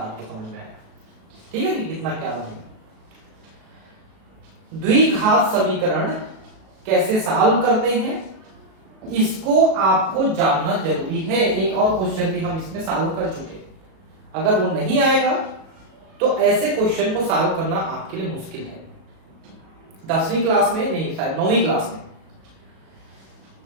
समझ में आया, ठीक है। कितना क्या बनेगा। द्विघात समीकरण कैसे सॉल्व करते हैं इसको आपको जानना जरूरी है। एक और क्वेश्चन भी हम इसमें सॉल्व कर चुके, अगर वो नहीं आएगा तो ऐसे क्वेश्चन को सॉल्व करना आपके लिए मुश्किल है। 10वीं क्लास में नहीं, शायद 9वीं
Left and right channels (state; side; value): late; left; 37 ms